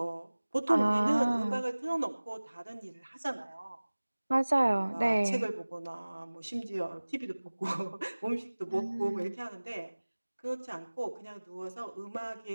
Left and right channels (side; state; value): both; inverted; correlation -1.00